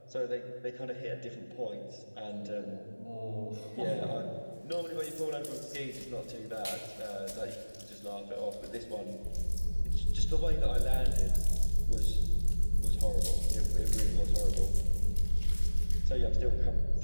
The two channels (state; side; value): inverted; both; correlation -1.00